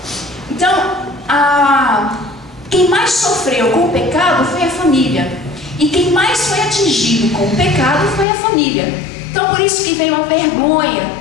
Então, quem mais sofreu com o pecado foi a família. E quem mais foi atingido com o pecado foi a família. Então, por isso que veio a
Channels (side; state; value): right; drops out; at 8.2 s